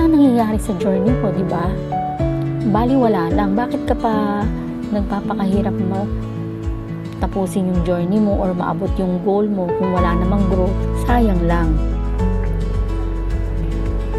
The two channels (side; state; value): both; identical; correlation 1.00